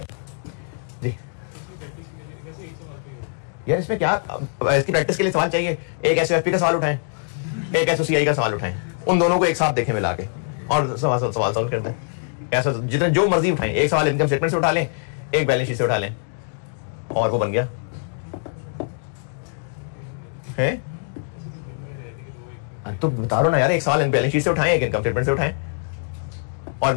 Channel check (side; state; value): right; silent; digital silence